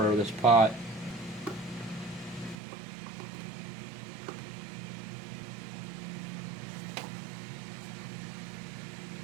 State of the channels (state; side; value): drops out; left; at 2.6 s